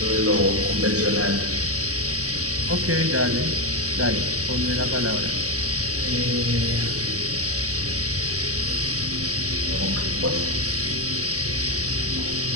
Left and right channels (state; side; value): late; left; 0.66 ms